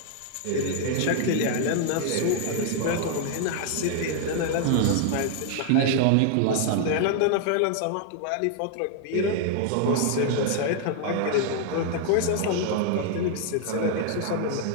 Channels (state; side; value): different; both; correlation 0.00